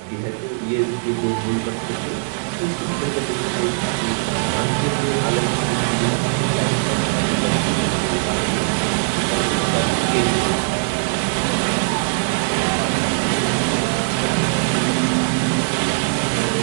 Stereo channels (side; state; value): left; silent; digital silence